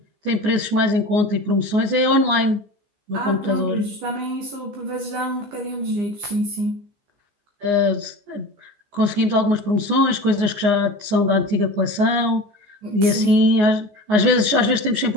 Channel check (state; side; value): late; left; 14 ms